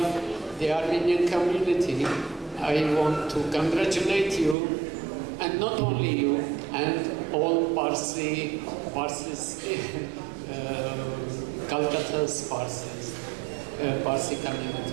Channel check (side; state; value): left; drops out; at 4.5 s